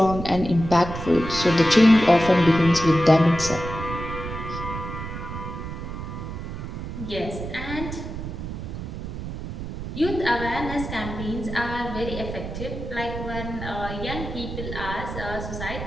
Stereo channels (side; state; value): right; noise; rumble, 7 dB below the sound